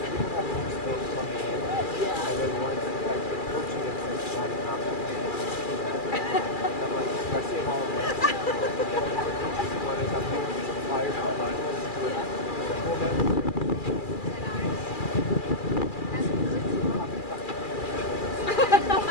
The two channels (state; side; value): late; right; 2.4 ms